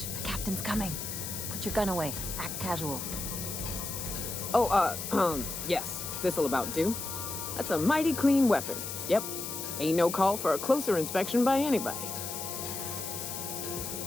the captain's coming. Put your gun away. Act casual. Oh, yes. This'll about do. That's a mighty clean weapon. Yep. Ain't no call for a closer inspection by anybody.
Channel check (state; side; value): noise; left; hiss, 6 dB below the sound